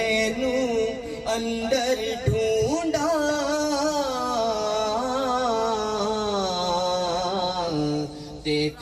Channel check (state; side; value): identical; both; correlation 1.00